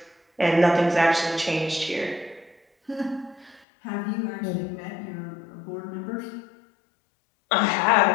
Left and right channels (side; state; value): right; drops out; at 3.7 s